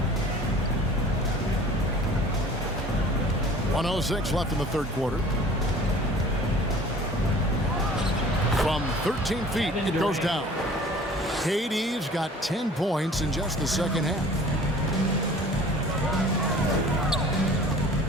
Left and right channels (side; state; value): both; normal; correlation 0.47